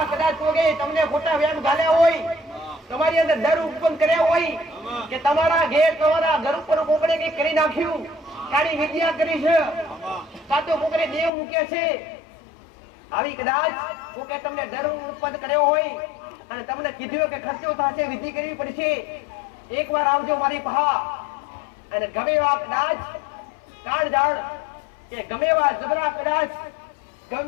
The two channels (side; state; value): right; drops out; at 11.3 s